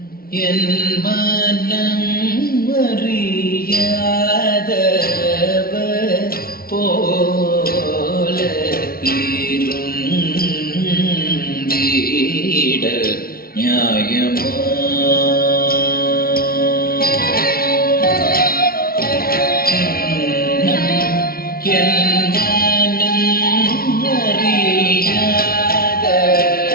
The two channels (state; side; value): late; right; 0.43 ms